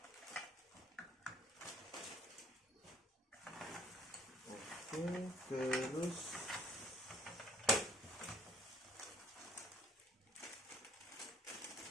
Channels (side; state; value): both; normal; correlation 0.58